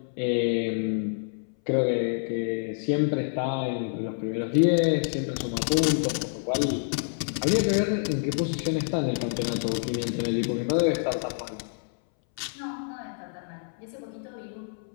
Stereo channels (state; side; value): silent; right; 60 dB below the other